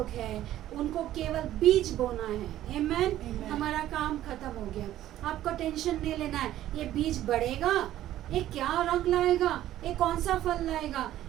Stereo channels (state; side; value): quieter; left; 13.2 dB